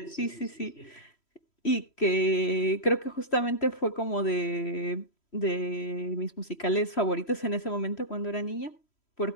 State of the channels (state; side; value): late; right; 3.1 ms